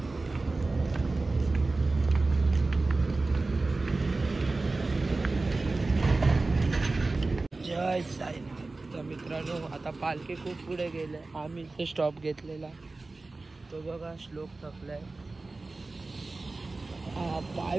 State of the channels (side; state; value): left; quieter; 3.4 dB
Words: जय साईनाथ. तर मित्रांनो, आता पालखी खूप पुढे गेले. आम्ही इथे स्टॉप घेतलेला. तो बघा श्लोक थकलाय. पाय